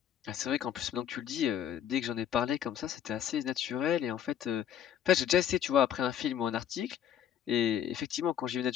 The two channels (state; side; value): quieter; right; 9.7 dB